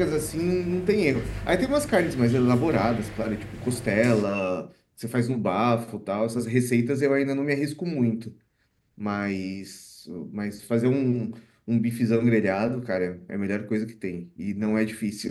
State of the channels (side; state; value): both; identical; correlation 1.00